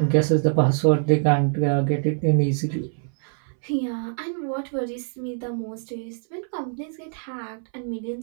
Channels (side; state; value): left; silent; 62 dB below the other